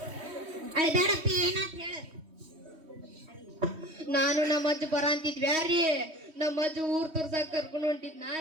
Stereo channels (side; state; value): left; late; 3.1 ms